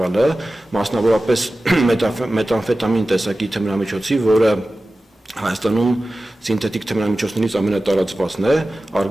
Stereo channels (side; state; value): both; normal; correlation 0.95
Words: մասնավորապես մետամֆետամին տեսակի թմրամիջոցի, որը Հայաստանում սինթետիկ թմրամիջոցներից ամենատարածվածն է,